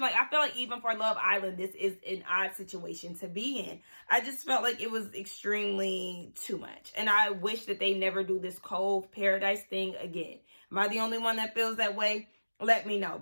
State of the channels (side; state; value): both; inverted; correlation -1.00